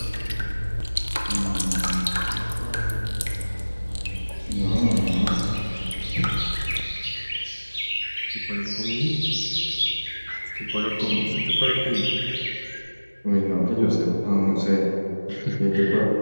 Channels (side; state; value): both; inverted; correlation -1.00